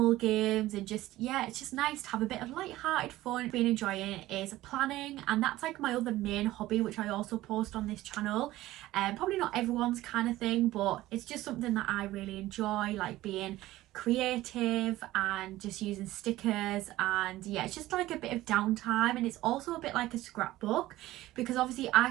games, and just, yeah, it's just nice to have a bit of light-hearted fun. Been enjoying is planning, and that's like my other main hobby, which I also post on this channel. Probably not everyone's kind of thing, but it's just something that I really enjoy, like being creative and just using stickers. And yeah, it's just like a bit of downtime, and it's also a bit like a scrapbook, because obviously I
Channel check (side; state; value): left; quieter; 16.3 dB